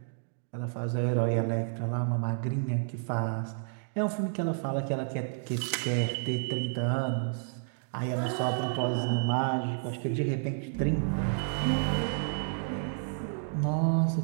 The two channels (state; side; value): silent; left; digital silence